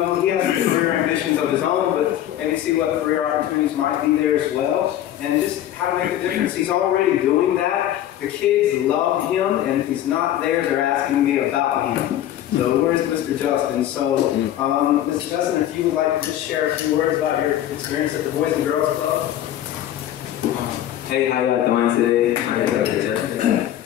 career ambitions of his own, but maybe see what career opportunities might be there as well, and just how to make a difference. He's already doing that. The kids love him, and if he's not there, they're asking me about him. So where's Mr. Justin? So, Mr. Justin, if you would like to just share a few words about your experience at the Boys and Girls Club. Hey, how y'all doing today? My name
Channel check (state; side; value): quieter; right; 12.1 dB